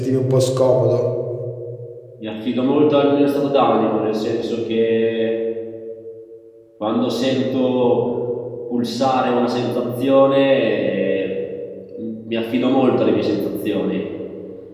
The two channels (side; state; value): both; identical; correlation 1.00